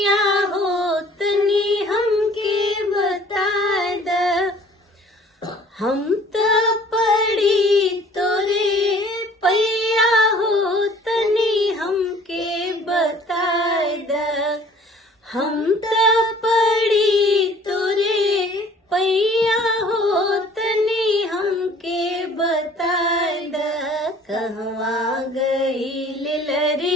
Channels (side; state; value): both; normal; correlation 0.53